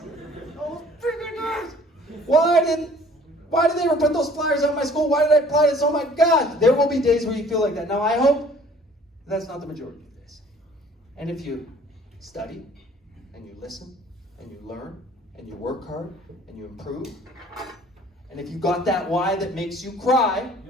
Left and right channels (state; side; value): normal; both; correlation 0.53